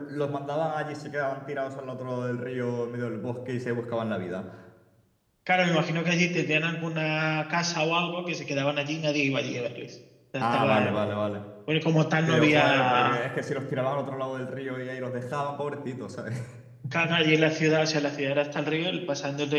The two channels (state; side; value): identical; both; correlation 1.00